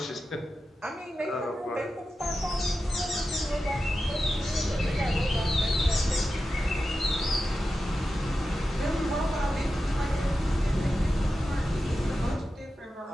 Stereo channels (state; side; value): normal; both; correlation 0.92